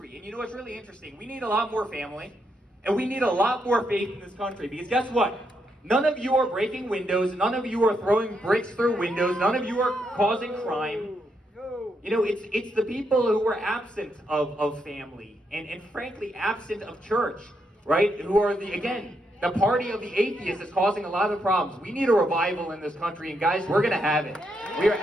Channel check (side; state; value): both; normal; correlation 0.79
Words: And what's really interesting? We need a lot more family, and we need a lot more faith in this country. Because guess what? None of you are breaking windows. None of you are throwing bricks through windows. None of you are causing crime. You know, it's the people who are absent of family and frankly absent of church, right? Who are the party of the atheists is causing a lot of problems. We need a revival in this country, and guys, we're gonna have it. We are